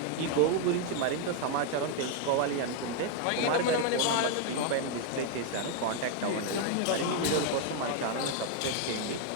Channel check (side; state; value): both; different; correlation 0.00